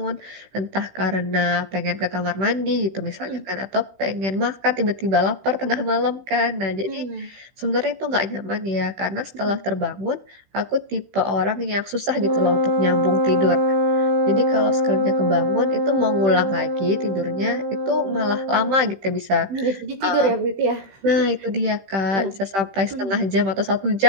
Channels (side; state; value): left; late; 15 ms